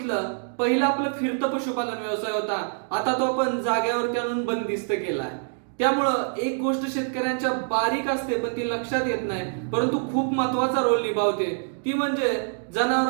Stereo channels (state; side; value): silent; left; digital silence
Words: पहिला आपलं फिरतं पशुपालन व्यवसाय होता, आता तो आपण जाग्यावरती आणून बंदिस्त केलाय. त्यामुळं एक गोष्ट शेतकऱ्यांच्या बारीक असते पण ती लक्षात येत नाही, परंतु खूप महत्वाचा रोल निभावते. ती म्हणजे